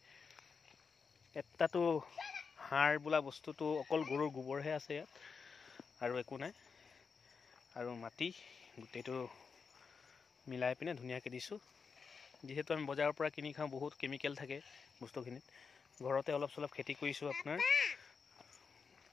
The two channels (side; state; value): right; quieter; 5.5 dB